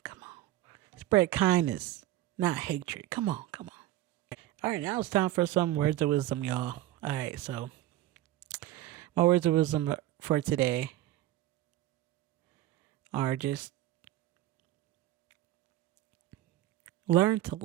Spread kindness, not hatred. Come on. All right, now it's time for some words of wisdom, y'all. All right, so my words of wisdom for today are just learn to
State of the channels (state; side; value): quieter; left; 14.4 dB